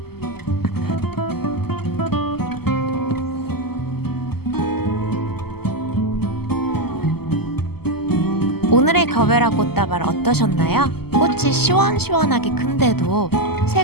오늘의 거베라 꽃다발 어떠셨나요? 꽃이 시원시원하게 큰데도 세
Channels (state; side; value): late; right; 0.96 ms